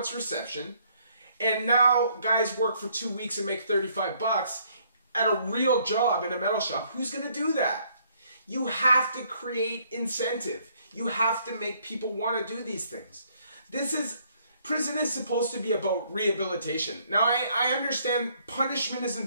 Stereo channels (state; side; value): inverted; both; correlation -0.66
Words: reception. And now guys work for 2 weeks and make $35 at a real job in a metal shop. Who's going to do that? You have to create incentive. You have to make people want to do these things. Prison is supposed to be about rehabilitation. Now, I understand punishment is